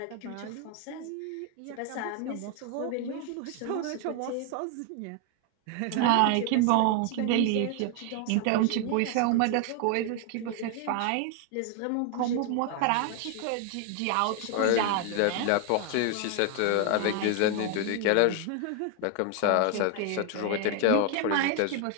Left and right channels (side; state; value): both; different; correlation 0.01